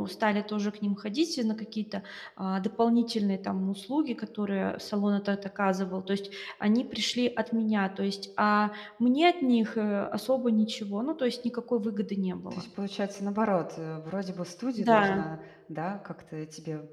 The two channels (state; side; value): identical; both; correlation 1.00